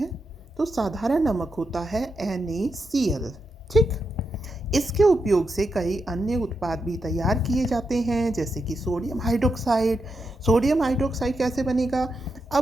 तो साधारण नमक होता है NaCl। ठीक, इसके उपयोग से कई अन्य उत्पाद भी तैयार किए जाते हैं, जैसे कि सोडियम हाइड्रोक्साइड। सोडियम हाइड्रोक्साइड कैसे बनेगा?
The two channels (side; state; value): both; normal; correlation 0.85